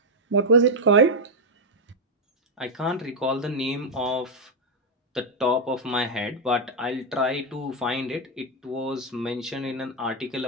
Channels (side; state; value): both; normal; correlation 0.01